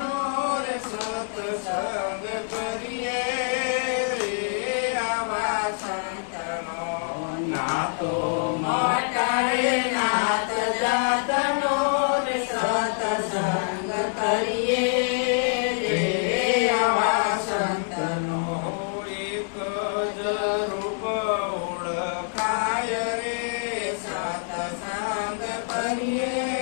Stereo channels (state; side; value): silent; right; digital silence